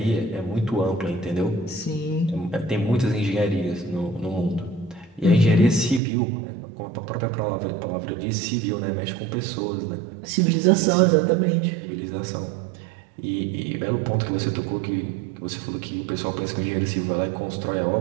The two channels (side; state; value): left; drops out; at 6.0 s